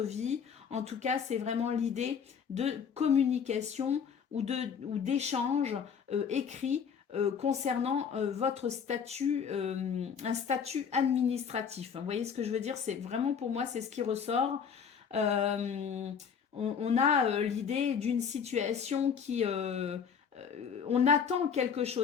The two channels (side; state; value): right; quieter; 6.8 dB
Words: vie? En tout cas, c'est vraiment l'idée de communication ou d'échange écrit concernant votre statut, un statut administratif. Vous voyez ce que je veux dire? C'est vraiment pour moi, c'est ce qui ressort. On a l'idée d'une situation qui... on attend quelque